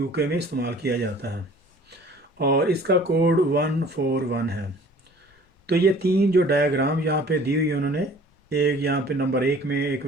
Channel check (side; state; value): both; normal; correlation 0.50